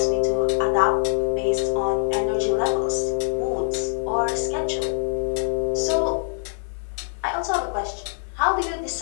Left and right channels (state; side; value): silent; right; 59 dB below the other